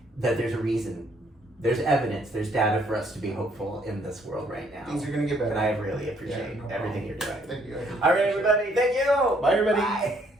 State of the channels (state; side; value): normal; both; correlation 0.67